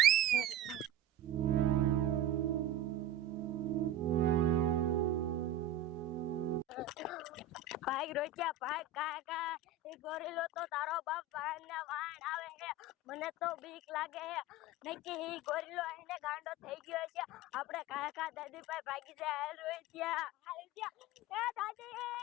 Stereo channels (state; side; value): quieter; left; 3.1 dB